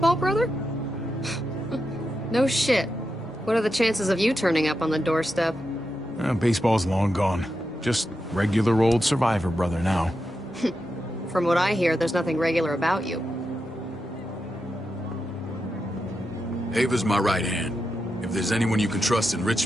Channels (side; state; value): both; normal; correlation 0.87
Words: brother? No shit. What are the chances of you turning up on the doorstep? Baseball's long gone. Just regular old survivor brother now. From what I hear, there's nothing regular about you. Ava's my right hand. If there's anyone you can trust in